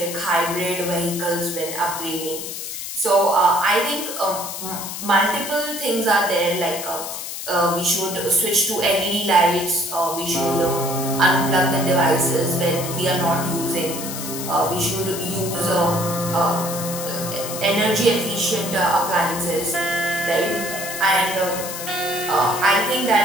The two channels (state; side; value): noise; left; hiss, 7 dB below the sound